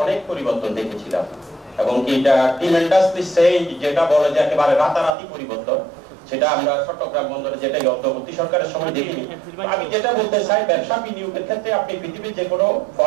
অনেক পরিবর্তন দেখেছিলাম এবং কি এটা ট্রিমেন্ডাসলি চেঞ্জ, যেটা বলে যে একেবারে রাতারাতি পরিবর্তন, সেটা আমরা চট্টগ্রাম বন্দরে যেটাই অন্তর্বর্তী সরকারের সময় দেখিনি। আমি যেটা বলতে চাই, ব্যবসা বিনিয়োগের ক্ষেত্রে আপনি পৃথিবীর যে কোনো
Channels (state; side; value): drops out; left; at 5.1 s